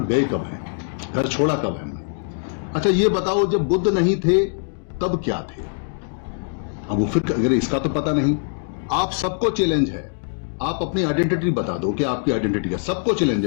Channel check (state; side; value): silent; right; digital silence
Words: गए कब हैं, घर छोड़ा कब है हमने। अच्छा ये बताओ, जब बुद्ध नहीं थे तब क्या थे? अब वो फिर अगर इसका तो पता नहीं। आप सबको चैलेंज है, आप अपनी आइडेंटिटी बता दो कि आपकी आइडेंटिटी है। सबको चैलेंज